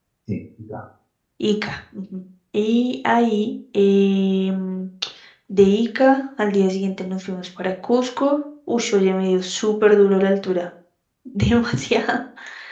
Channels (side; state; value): both; identical; correlation 1.00